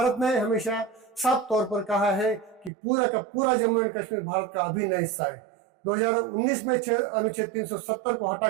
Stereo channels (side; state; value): left; drops out; at 2.7 s